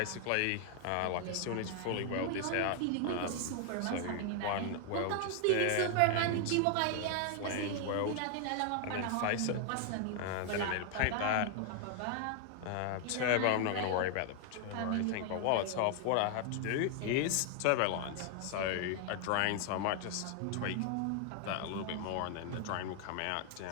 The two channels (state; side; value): different; both; correlation 0.00